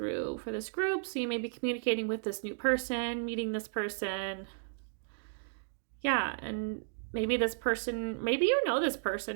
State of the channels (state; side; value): silent; left; digital silence